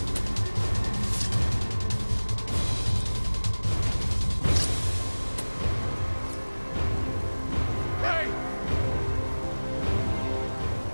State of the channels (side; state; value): both; inverted; correlation -1.00